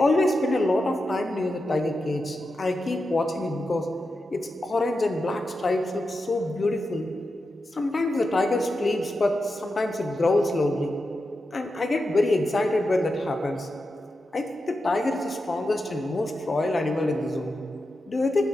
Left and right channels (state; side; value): normal; both; correlation 0.89